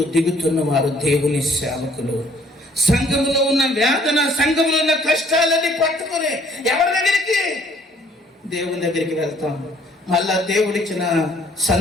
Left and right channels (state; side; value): normal; both; correlation 0.60